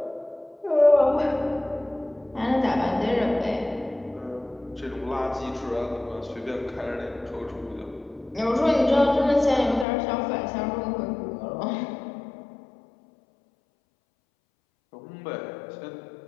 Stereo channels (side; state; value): right; drops out; at 9.9 s